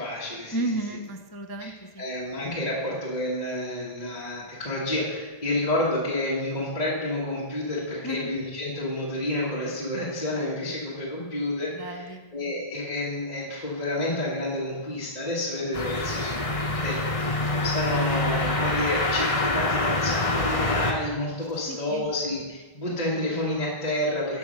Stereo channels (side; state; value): right; late; 1.6 ms